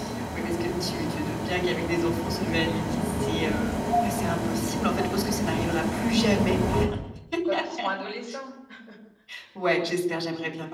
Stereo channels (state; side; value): identical; both; correlation 1.00